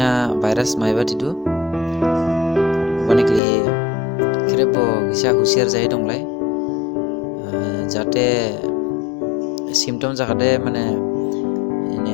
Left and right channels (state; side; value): drops out; right; at 3.4 s